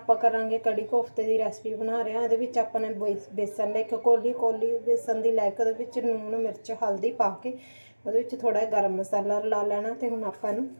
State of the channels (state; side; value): inverted; both; correlation -1.00